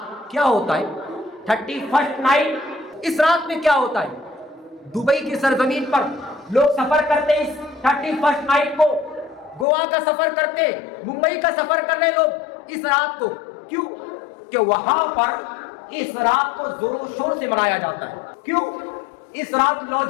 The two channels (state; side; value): drops out; right; at 9.7 s